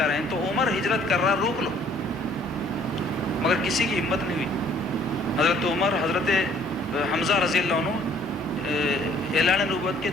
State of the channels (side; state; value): both; normal; correlation 0.59